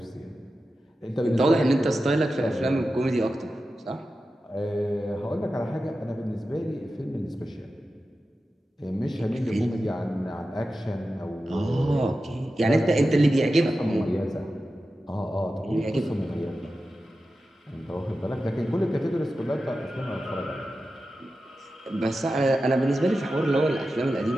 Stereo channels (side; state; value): both; normal; correlation 0.92